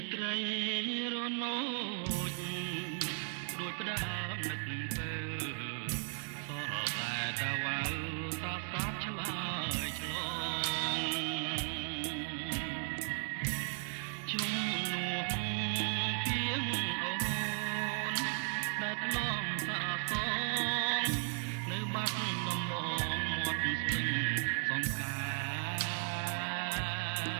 ត្រីរនោចដូចផ្ដើមនឹកទៅសោះតែតវ៉ាសាស្រាប់ឆ្លើយឆ្លងជុំនួនពីងអូនដែលធ្លាប់សាសងនៅបាត់ដំបងមាត់ស្ទឹងសង្ខា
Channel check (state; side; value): silent; left; 54 dB below the other